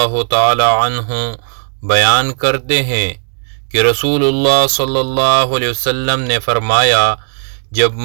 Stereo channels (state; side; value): silent; left; digital silence